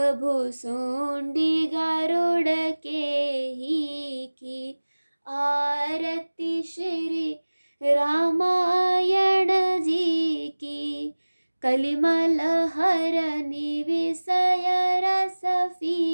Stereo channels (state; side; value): inverted; both; correlation -1.00